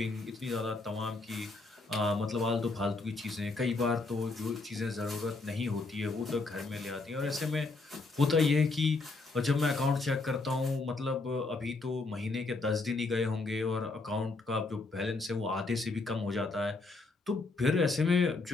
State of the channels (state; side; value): quieter; right; 3.6 dB